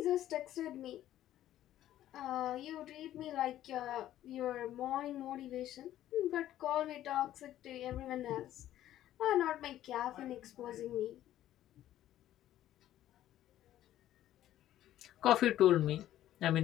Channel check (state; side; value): quieter; right; 12.9 dB